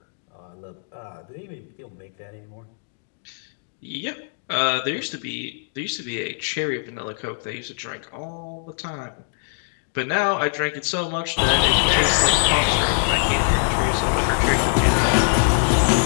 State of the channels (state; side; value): silent; right; digital silence